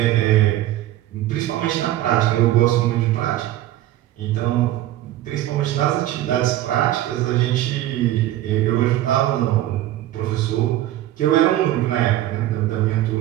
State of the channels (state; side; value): quieter; left; 14.2 dB